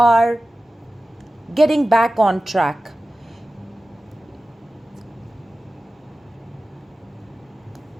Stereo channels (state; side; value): normal; both; correlation 0.95